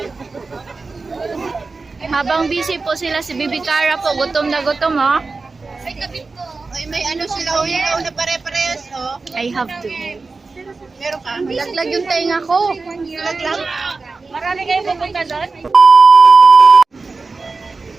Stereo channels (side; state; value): left; quieter; 3.9 dB